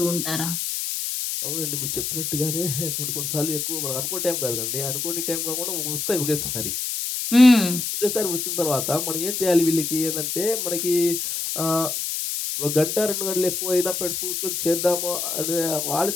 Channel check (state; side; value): noise; left; hiss, 2 dB below the sound